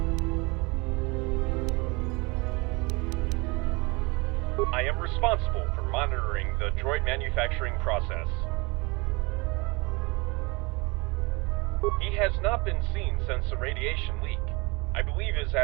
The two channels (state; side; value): quieter; left; 26.6 dB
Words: I am responsible for monitoring the droid manufacturing process. He has not been seen since the radiation leak. I believe his